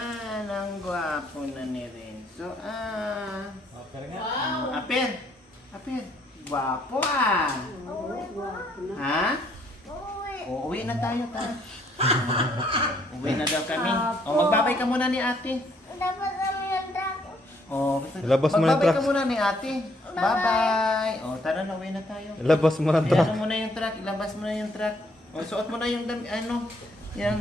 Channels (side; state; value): both; normal; correlation 0.68